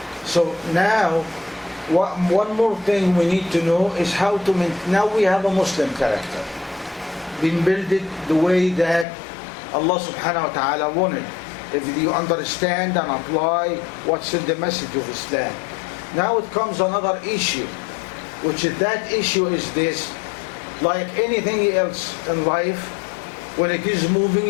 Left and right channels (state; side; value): drops out; right; at 9.1 s